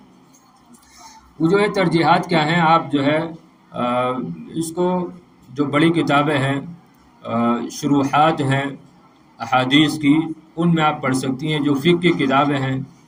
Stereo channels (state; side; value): identical; both; correlation 1.00